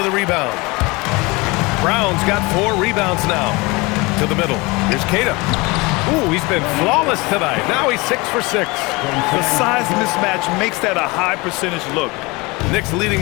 a rebound. Brown's got 4 rebounds now. To the middle. Here's Queta. Ooh, he's been flawless tonight. Now he's 6 for 6. The size mismatch makes that a high percentage look. Knicks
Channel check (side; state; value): right; quieter; 24.7 dB